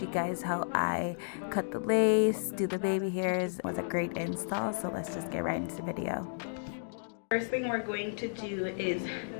guys how I cut the lace, do the baby hairs. It was a great install, so let's just get right into the video. First thing we're going to do is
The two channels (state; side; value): silent; right; digital silence